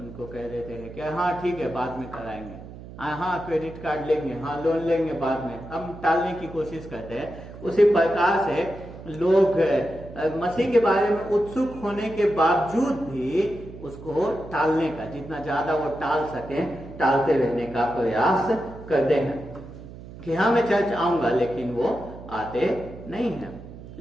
कह देते हैं कि हाँ ठीक है बाद में कराएंगे, हाँ क्रेडिट कार्ड लेंगे, हाँ लोन लेंगे बाद में, हम टालने की कोशिश करते हैं। उसी प्रकार से लोग मसीह के बारे में उत्सुक होने के बावजूद भी उसको टालने का, जितना ज्यादा वो टाल सके, टालते रहने का प्रयास करते हैं कि हाँ मैं चर्च आऊंगा, लेकिन वो आते नहीं है।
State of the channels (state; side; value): noise; right; hum, 15 dB below the sound